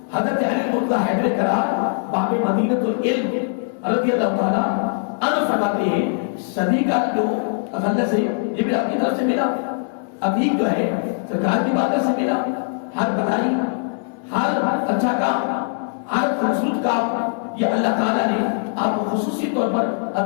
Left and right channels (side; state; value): right; silent; 63 dB below the other